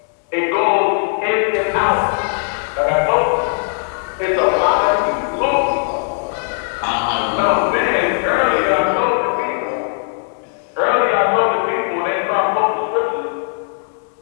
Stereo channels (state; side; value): silent; right; 67 dB below the other